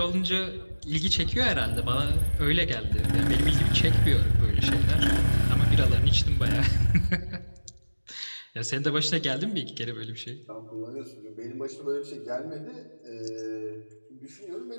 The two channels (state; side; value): inverted; both; correlation -1.00